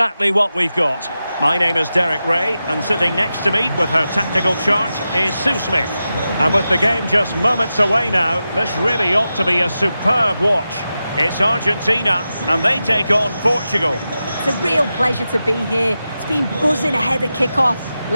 what we've got. My name is Derek Ray, and sitting next to me with her tactical chart is Sue Smith. And with the game just moments away now, this really ought to be a superb watch. It's Argentina, and they take on Portugal. It's a real pleasure to be here. It's been buzzing ahead of kick-off.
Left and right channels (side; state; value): both; inverted; correlation -0.91